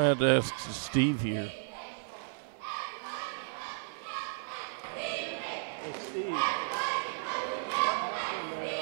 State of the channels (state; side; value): silent; left; 55 dB below the other